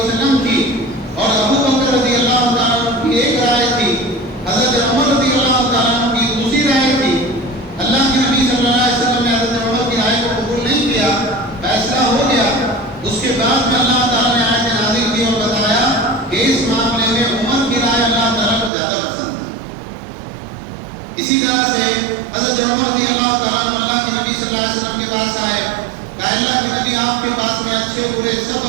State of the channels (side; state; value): left; drops out; at 18.7 s